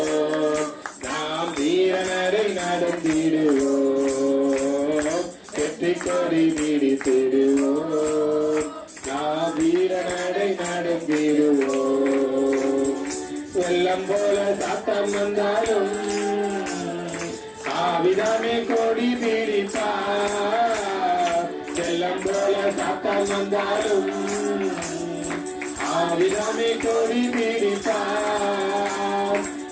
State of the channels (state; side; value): identical; both; correlation 1.00